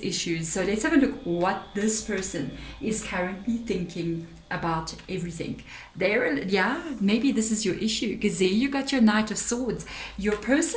So let's have a look what this person is currently thinking about everything. Maybe this is your issue, because there you got your Knight of Swords. Your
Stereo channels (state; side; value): identical; both; correlation 1.00